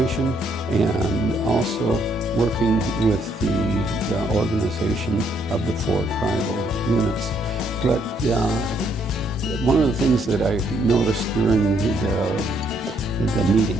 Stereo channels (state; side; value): normal; both; correlation 0.70